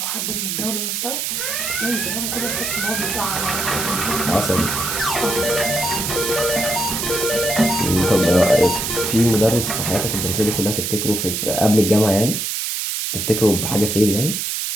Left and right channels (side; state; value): right; noise; hiss, 2 dB below the sound